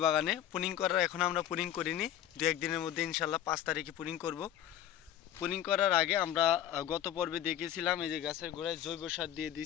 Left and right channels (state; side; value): quieter; right; 11.2 dB